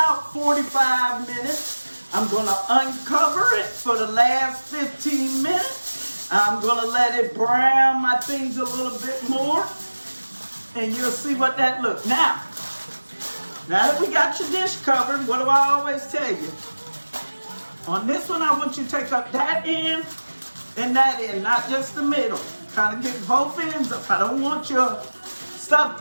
45 minutes. I'm going to uncover it for the last 15 minutes. I'm going to let it brown my things a little bit more. And you'll see what that looks. Now, Now that we got your dish covered, what do I always tell you? On this one, I want you to take up that end and that end, not just the middle. Kind of get both ends up. I don't want your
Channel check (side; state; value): both; inverted; correlation -1.00